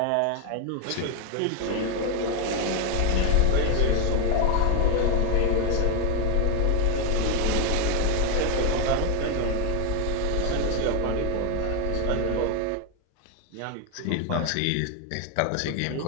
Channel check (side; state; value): both; different; correlation 0.01